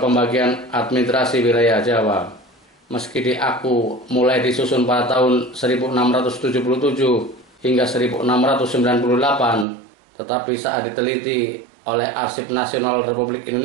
administrasi wilayah Jawa. Meski diaku mulai disusun pada tahun 1677 hingga 1698, tetapi saat diteliti oleh Arsip Nasional Republik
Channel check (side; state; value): left; drops out; at 9.7 s